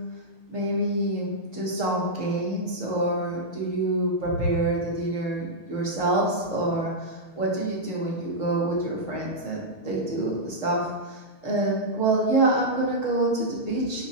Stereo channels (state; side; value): late; right; 6.5 ms